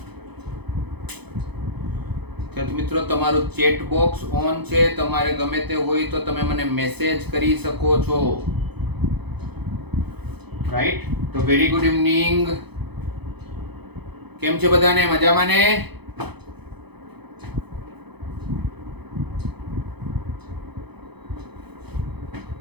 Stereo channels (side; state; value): left; late; 0.98 ms